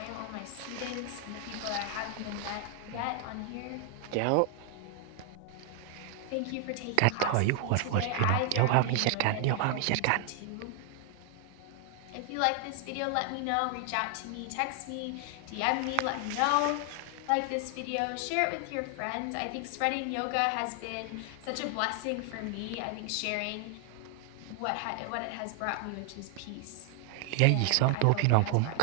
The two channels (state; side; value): different; both; correlation 0.00